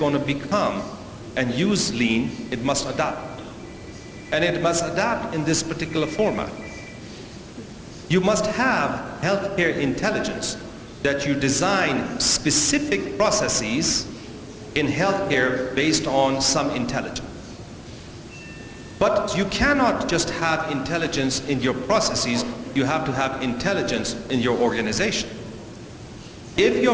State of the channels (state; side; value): identical; both; correlation 1.00